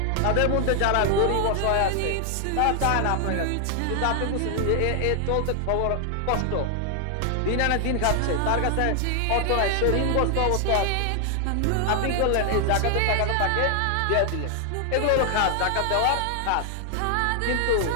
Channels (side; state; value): both; different; correlation 0.00